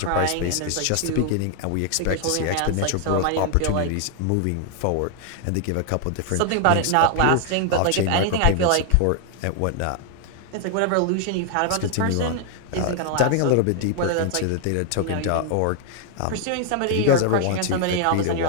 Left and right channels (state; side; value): different; both; correlation 0.00